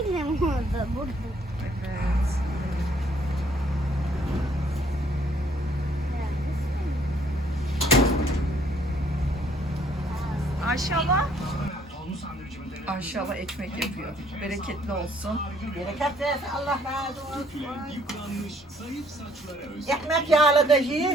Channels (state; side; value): normal; both; correlation 0.63